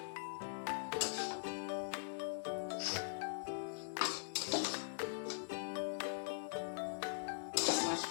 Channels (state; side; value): silent; right; digital silence